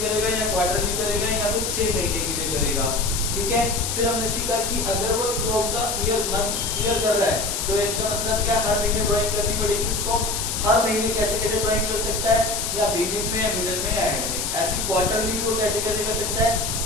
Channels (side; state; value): left; noise; hiss, 2 dB below the sound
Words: करेगा, या क्वार्टरली करेगा, या फिर 6 महीने के लिए करेगा। ठीक है। फिर हमने सीखा कि अगर वो थ्रू आउट द ईयर कर रहा है तो इसका मतलब क्या, हर महीने ड्राइंग करनी पड़ेगी उसको। हर महीने कैसे कैसे ड्राइंग कर सकता है, या बिगिनिंग में, या मिडिल में, या एंड में। ऐसी क्वार्टरली भी वो कैसे कैसे कर सकता है,